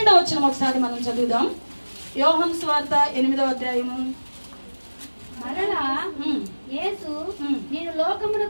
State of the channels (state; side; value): inverted; both; correlation -1.00